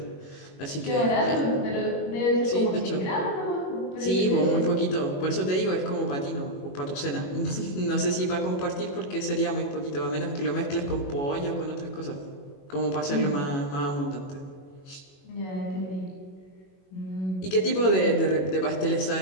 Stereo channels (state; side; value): late; right; 22 ms